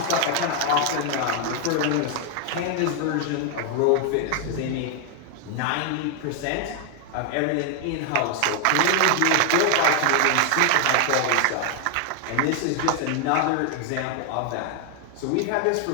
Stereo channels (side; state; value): both; different; correlation 0.00